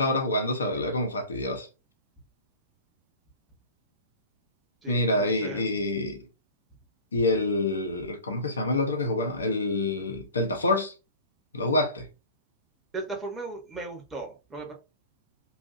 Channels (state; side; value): inverted; both; correlation -0.41